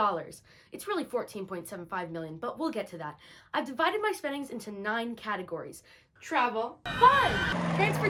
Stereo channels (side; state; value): both; identical; correlation 1.00